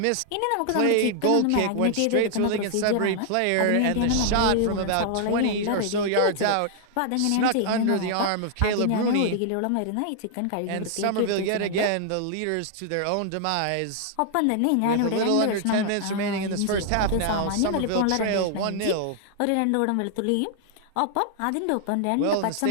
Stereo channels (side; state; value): both; different; correlation 0.00